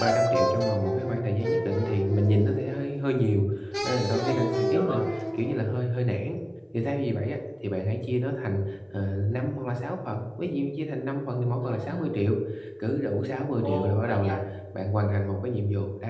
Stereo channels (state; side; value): identical; both; correlation 1.00